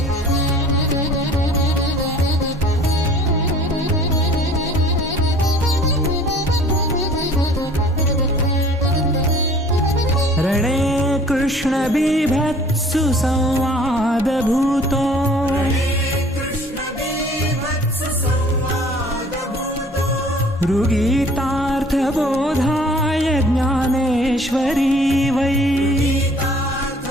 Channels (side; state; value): both; normal; correlation 0.51